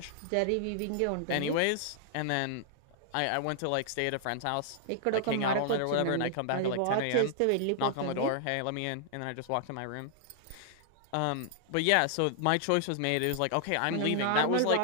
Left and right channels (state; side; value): different; both; correlation -0.01